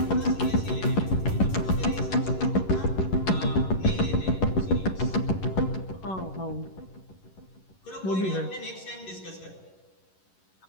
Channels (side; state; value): right; late; 11 ms